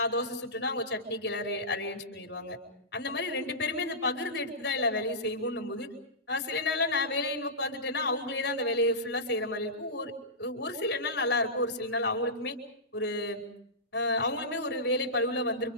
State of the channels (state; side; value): normal; both; correlation -0.18